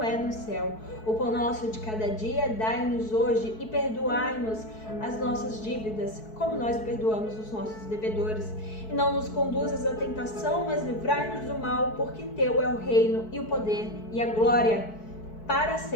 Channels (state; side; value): late; right; 4.6 ms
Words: é no céu. O pão nosso de cada dia dai-nos hoje e perdoai-nos as nossas dívidas, como nós perdoamos os nossos devedores. E não nos conduzas à tentação, mas livrai-nos do mal, porque teu é o reino e o poder e a glória para